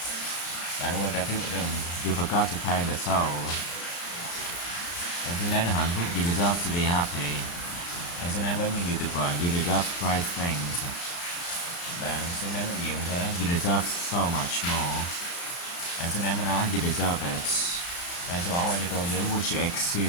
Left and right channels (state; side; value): late; right; 35 ms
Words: Bạn quên trả phiếu đường. You forgot to pay the toll. Bạn xứng đáng là hạnh phúc. You deserve to be happy. Bạn xứng đáng với những điều tuyệt vời. You deserve great things. Bạn xứng đáng được nhiều như thế. You deserve so much more. Bạn xứng đáng với nó. You deserve it. Bạn sẽ bỏ qua cho tôi dưới. Would you